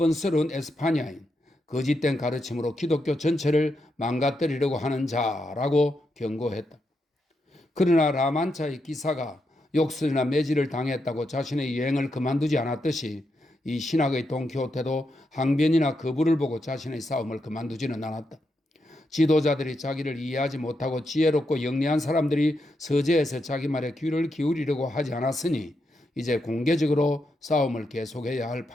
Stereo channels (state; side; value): normal; both; correlation 0.83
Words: 에스파냐인, 거짓된 가르침으로 기독교 전체를 망가뜨리려고 하는 자라고 경고했다. 그러나 라만차의 기사가 욕설이나 매질을 당했다고 자신의 여행을 그만두지 않았듯이 이 신학의 돈키호테도 항변이나 거부를 보고 자신의 싸움을 그만두지는 않았다. 지도자들이 자기를 이해하지 못하고 지혜롭고 영리한 사람들이 서재에서 자기 말에 귀를 기울이려고 하지 않았으니 이제 공개적으로 싸움을 계속해야 할